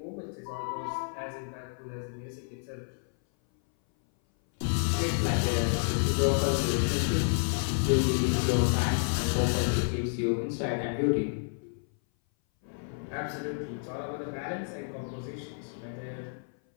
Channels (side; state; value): right; silent; 58 dB below the other